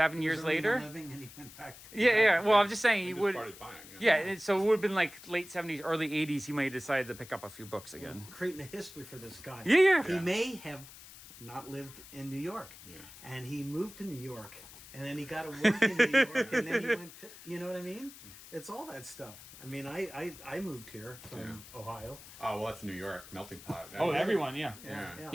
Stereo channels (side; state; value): left; noise; hiss, 17 dB below the sound